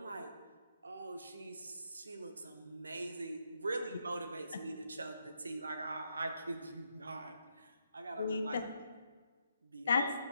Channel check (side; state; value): both; inverted; correlation -0.79